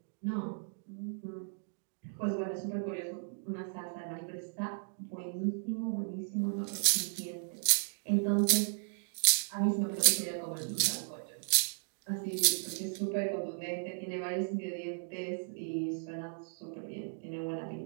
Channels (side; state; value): left; silent; digital silence